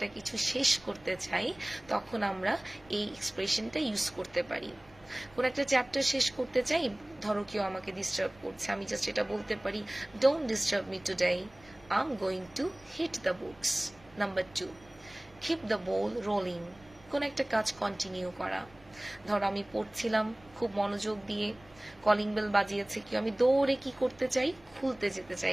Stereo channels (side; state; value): right; noise; rumble, 26 dB below the sound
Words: কিছু শেষ করতে চাই, তখন আমরা এই এক্সপ্রেশনটা ইউজ করতে পারি। কোনো একটা চ্যাপ্টার শেষ করতে চাই, ধরো কেউ আমাকে ডিস্টার্ব করছে, আমি জাস্ট এটা বলতে পারি, don't disturb me today, I am going to hit the books. Number 2, keep the ball rolling. কোন একটা কাজ কন্টিনিউ করা। ধরো আমি পড়ছিলাম খুব মনোযোগ দিয়ে, কলিং বেল বাজিয়েছে, কি আমি দৌড়ে কি করতে চাই, খুলতে যেতে চাই,